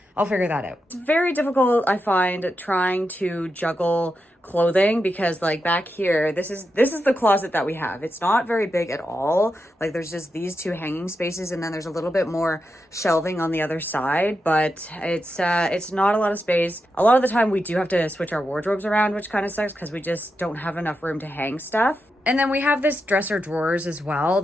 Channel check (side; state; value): both; normal; correlation 0.87